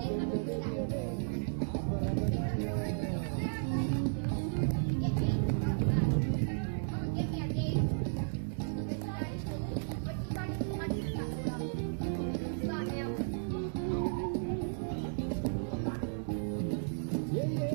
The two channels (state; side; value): silent; left; digital silence